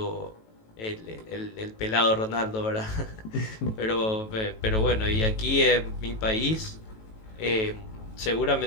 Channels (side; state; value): right; late; 18 ms